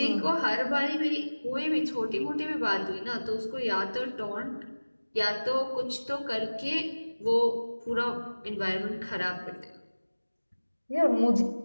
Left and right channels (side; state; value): both; inverted; correlation -1.00